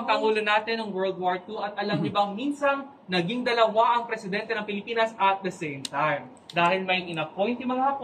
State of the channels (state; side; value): identical; both; correlation 1.00